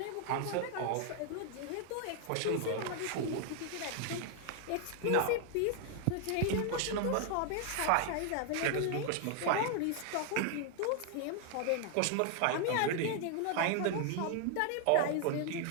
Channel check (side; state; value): both; different; correlation 0.00